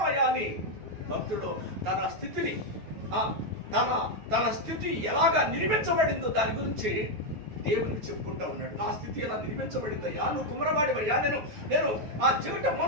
అని భక్తుడు తన స్థితిని, తన స్థితి ఎలాగా నిర్మించబడిందో దాని గురించి దేవునికి చెప్పుకుంటా ఉన్నాడు. నా స్థితి ఎలా నిర్మించబడిందయ్యా, నువ్వు కుమ్మరవాడివయ్యా, నేను ఆ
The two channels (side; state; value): left; late; 9.4 ms